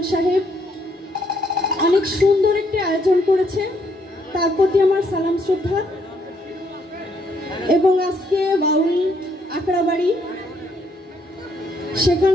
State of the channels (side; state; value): both; normal; correlation 0.71